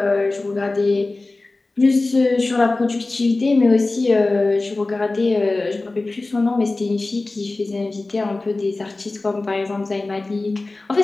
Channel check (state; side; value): quieter; right; 3.2 dB